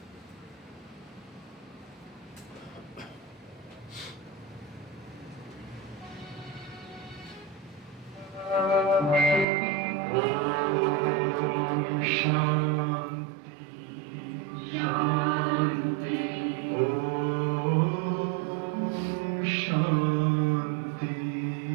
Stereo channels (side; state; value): left; drops out; at 9.5 s